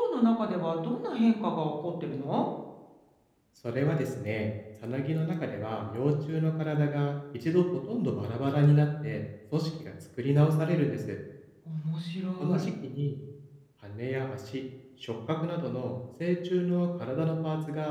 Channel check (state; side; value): identical; both; correlation 1.00